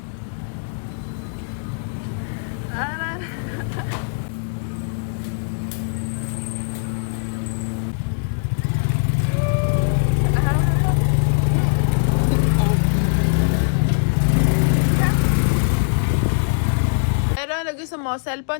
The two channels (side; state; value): right; silent; digital silence